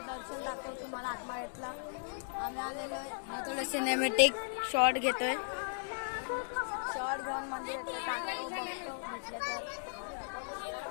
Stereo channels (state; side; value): silent; right; digital silence